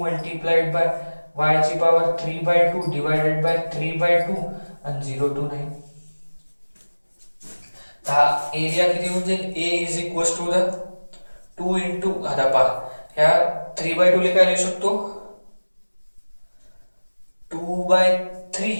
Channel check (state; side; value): inverted; both; correlation -1.00